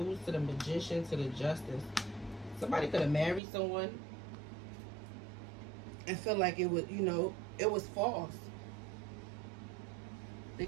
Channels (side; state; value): left; drops out; at 3.4 s